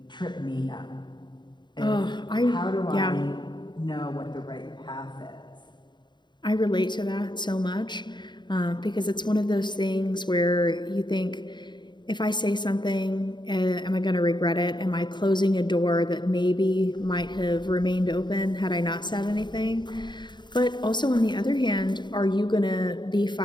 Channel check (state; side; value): late; right; 0.22 ms